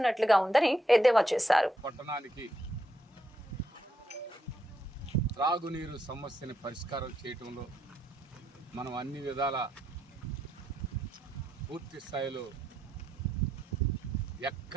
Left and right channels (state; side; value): normal; both; correlation 0.79